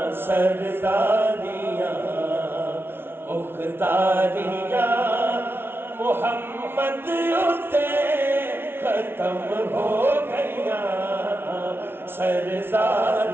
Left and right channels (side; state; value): left; late; 0.11 ms